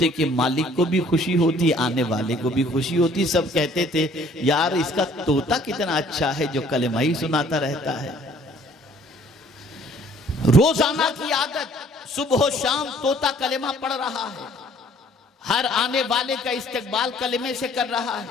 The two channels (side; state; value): both; normal; correlation 0.57